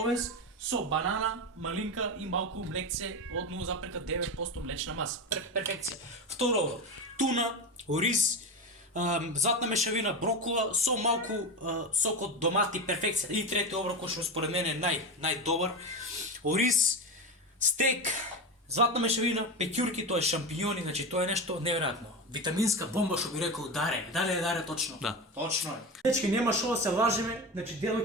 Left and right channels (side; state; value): both; normal; correlation 0.21